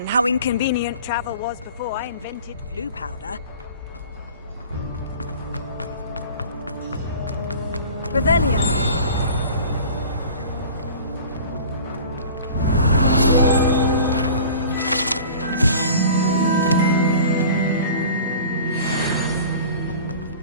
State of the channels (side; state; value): both; inverted; correlation -0.42